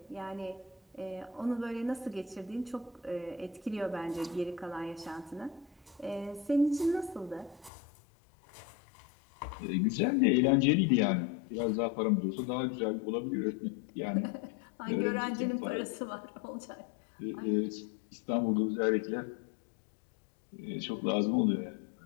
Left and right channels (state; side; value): drops out; right; at 7.7 s